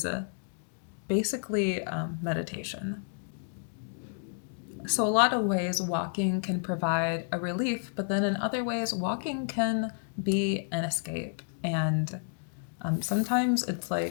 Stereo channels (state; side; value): silent; right; digital silence